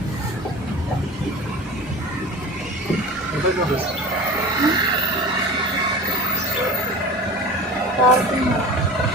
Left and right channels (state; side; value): normal; both; correlation 0.36